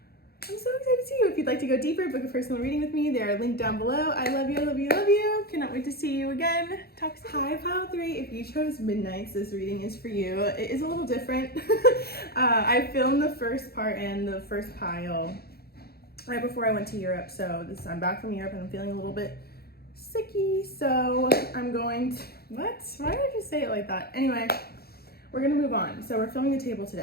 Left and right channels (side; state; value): right; late; 0.46 ms